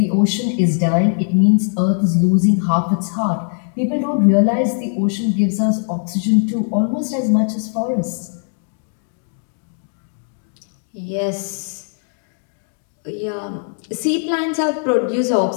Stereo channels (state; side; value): silent; right; digital silence